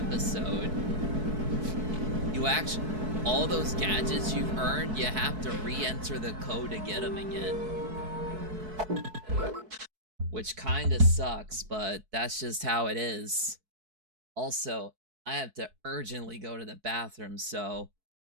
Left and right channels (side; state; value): left; late; 4.6 ms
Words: you actually, all those gadgets you've earned, you have to re-enter the code to get them again. Which kinda sucks, but that's just how it is. Also, I have to urgently go to the bathroom, so